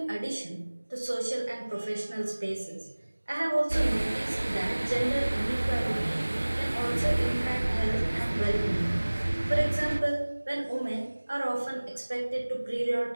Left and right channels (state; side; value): inverted; both; correlation -1.00